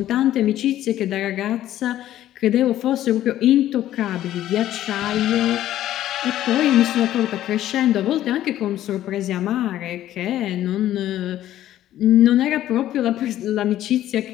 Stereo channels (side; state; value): right; quieter; 12.9 dB